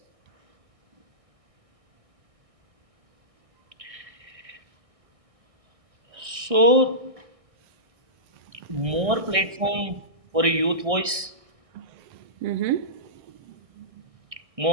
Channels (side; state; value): left; late; 1.6 ms